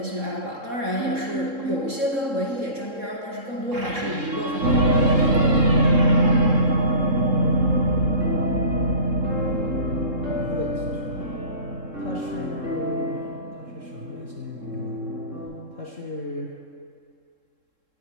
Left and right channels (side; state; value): left; late; 3.7 ms